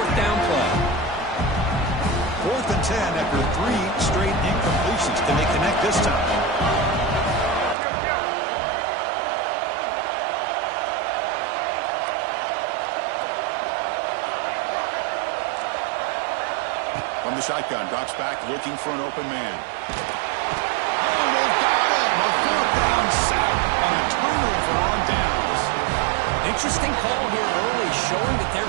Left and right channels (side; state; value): left; drops out; at 7.8 s